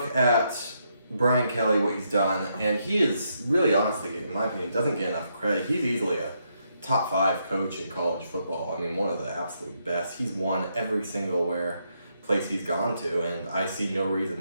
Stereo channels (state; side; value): inverted; both; correlation -0.78